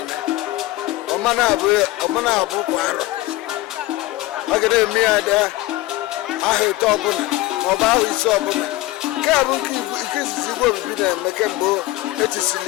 ọmana abụ kwa arọ ọ ga na-eme ya dị aha ite ọbụla maọbụ ahụ ise ọbụla nke a bụ nke izizi igwe obibi na-eme kemgbe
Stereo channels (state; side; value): quieter; right; 17.9 dB